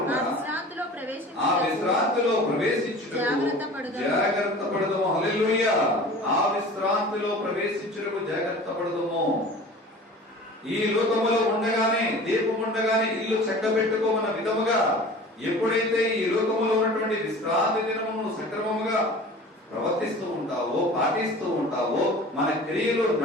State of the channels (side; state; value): both; normal; correlation 0.41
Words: ఆ విశ్రాంతిలో ప్రవేశించుటకు జాగ్రత్త పడదము. హల్లెలూయా. ఆ విశ్రాంతిలో ప్రవేశించుటకు జాగ్రత్త పడదము. ఈ లోకములో ఉండగానే, దీపం ఉండగానే ఇల్లు చక్కబెట్టుకోమన్న విధముగా ఎప్పుడైతే ఈ లోకములో ఉన్నటువంటి విశ్రాంతి దినమును సక్రమముగా ప్రవర్తిస్తూ ఉంటావో, పాటిస్తూ ఉంటావో, మన క్రియలు